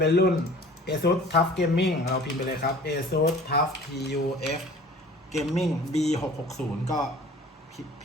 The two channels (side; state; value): both; normal; correlation 0.46